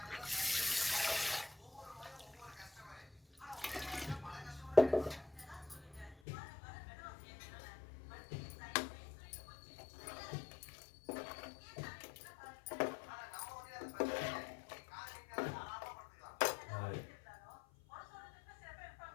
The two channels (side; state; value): right; drops out; at 6.2 s